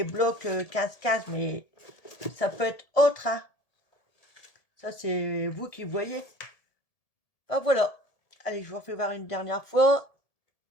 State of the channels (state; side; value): late; right; 1.7 ms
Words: blocs 15-15, mais ça peut être autre, hein. Ça c'est vous qui voyez. Ah voilà. Allez, je vous refais voir une dernière fois.